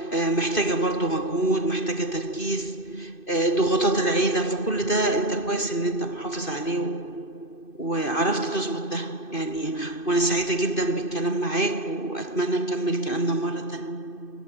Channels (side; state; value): right; late; 2.5 ms